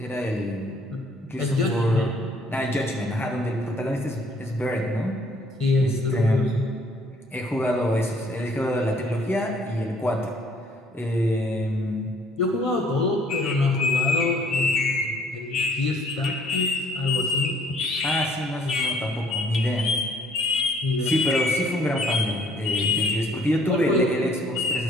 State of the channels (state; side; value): normal; both; correlation 0.61